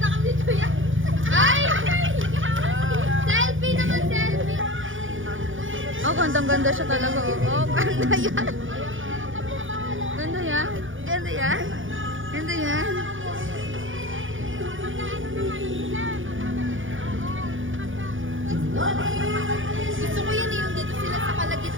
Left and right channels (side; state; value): left; late; 0.57 ms